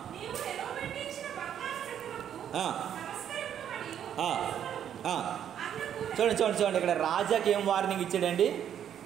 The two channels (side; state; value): left; quieter; 9.5 dB